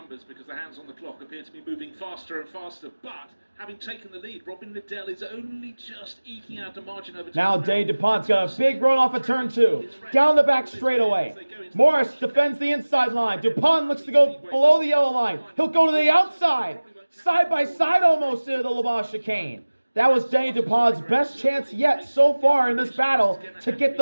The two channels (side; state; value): both; inverted; correlation -1.00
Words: because the hands on the clock appear to be moving faster and faster. But having taken the lead, Robin Liddell is only just eking out a margin over. Now Denis Dupont's got a big run off of turn 2. Down the back straightaway. Morris defends the inside line. Dupont looks to go below the yellow line. He'll go to the outside. Side by side almost into the Le Mans chicane. That was Denis Dupont's best chance yet so far in this battle to get